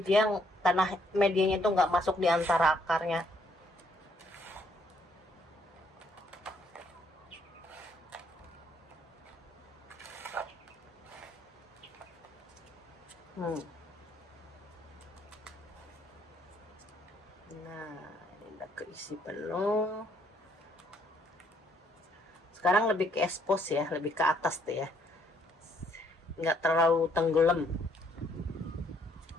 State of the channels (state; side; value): normal; both; correlation 0.69